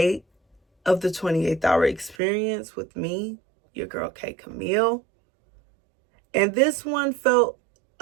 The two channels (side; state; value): left; drops out; at 2.1 s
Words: of the 28th Hour Experience with me, your girl K.Camille. And this one felt